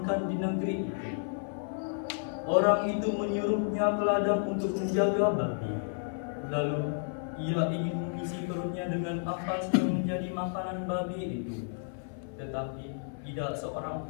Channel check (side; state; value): right; silent; 57 dB below the other